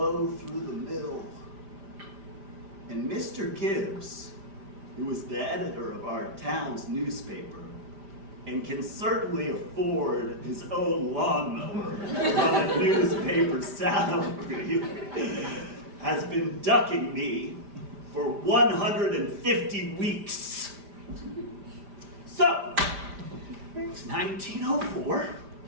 through the mill. And Mr. Gibbs, who is the editor of our town's newspaper, and can certainly afford his own lawnmower on a newspaper salary, has been ducking me for 150 weeks. So, it's 1904.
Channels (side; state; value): left; late; 5.0 ms